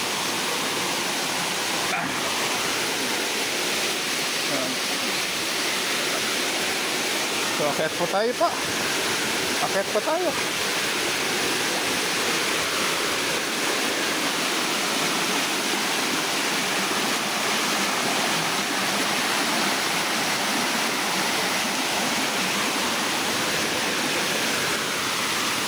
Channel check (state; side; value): identical; both; correlation 1.00